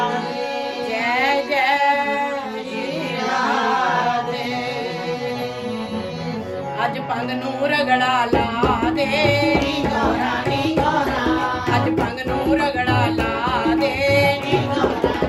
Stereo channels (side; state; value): both; identical; correlation 1.00